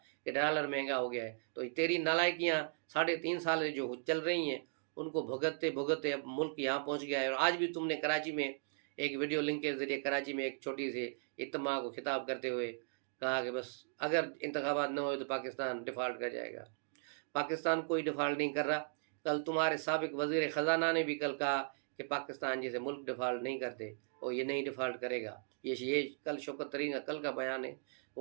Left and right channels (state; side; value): silent; left; digital silence